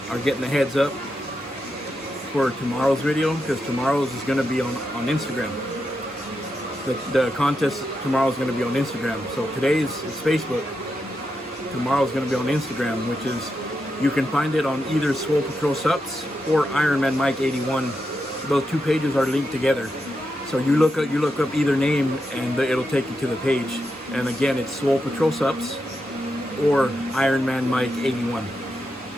are getting the heads up for tomorrow's video, because tomorrow's is going to be on Instagram. The contest tomorrow is going to be on Instagram. So today's is Facebook. Tomorrow's going to be on Instagram, which is, you can find it on either Swole Patrol Sups or Ironman Mike 81. Those two pages are linked together. So you look up either name and it'll take you to the page. And again, it's Swole Patrol Sups or Ironman Mike 81.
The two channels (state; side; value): normal; both; correlation 0.86